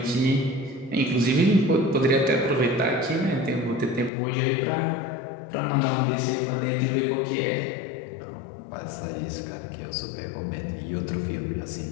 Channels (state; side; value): drops out; right; at 4.1 s